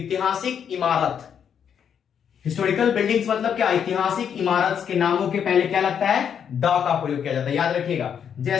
इमारत, हिस्टोरिकल बिल्डिंग्स मतलब क्या? ऐतिहासिक इमारत के नामों के पहले क्या लगता है? द का प्रयोग किया जाता है, याद रखिएगा।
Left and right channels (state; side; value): quieter; right; 8.0 dB